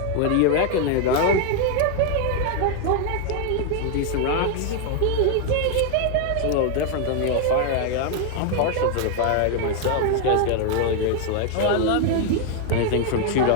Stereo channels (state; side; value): different; both; correlation 0.00